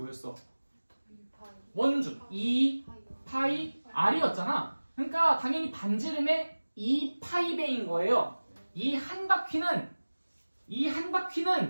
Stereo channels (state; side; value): inverted; both; correlation -1.00